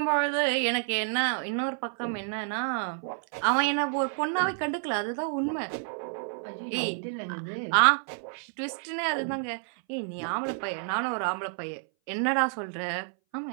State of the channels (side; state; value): left; silent; 58 dB below the other